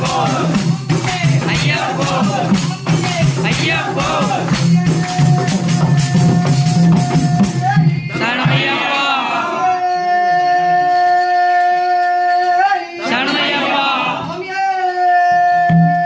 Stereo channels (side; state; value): both; identical; correlation 1.00